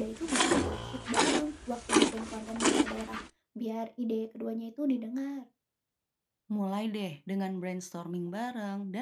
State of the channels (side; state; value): both; identical; correlation 1.00